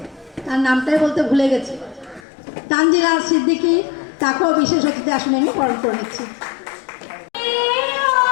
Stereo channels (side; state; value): right; drops out; at 2.2 s